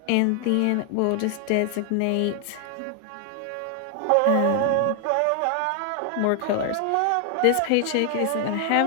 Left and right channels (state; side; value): different; both; correlation 0.00